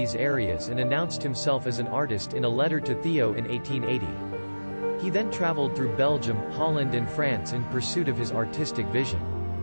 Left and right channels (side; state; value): both; inverted; correlation -1.00